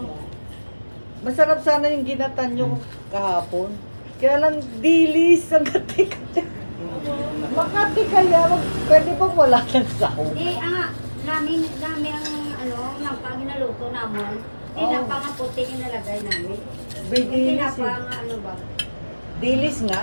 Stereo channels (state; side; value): inverted; both; correlation -1.00